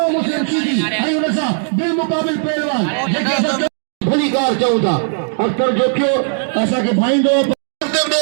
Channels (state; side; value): silent; left; digital silence